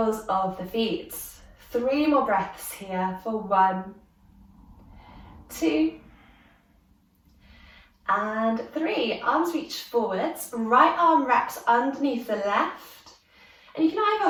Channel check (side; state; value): both; identical; correlation 1.00